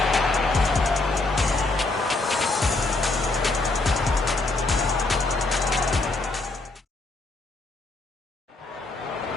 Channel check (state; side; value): quieter; right; 3.2 dB